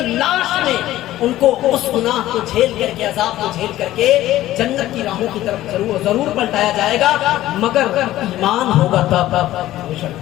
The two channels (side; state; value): right; quieter; 14.7 dB